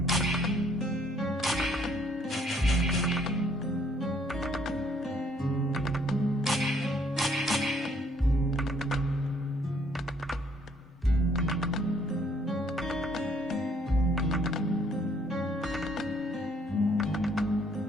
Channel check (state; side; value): normal; both; correlation 0.65